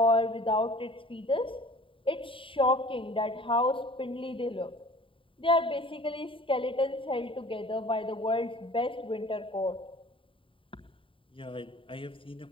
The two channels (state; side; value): late; right; 0.25 ms